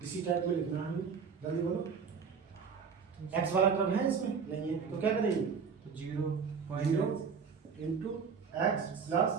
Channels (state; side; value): quieter; left; 6.0 dB